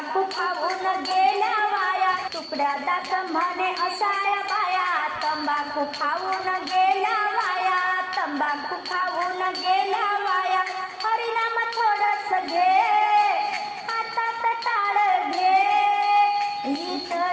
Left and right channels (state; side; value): identical; both; correlation 1.00